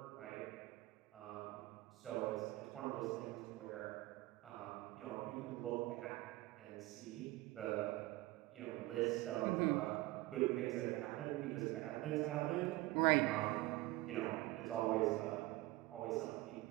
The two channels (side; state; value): left; quieter; 19.1 dB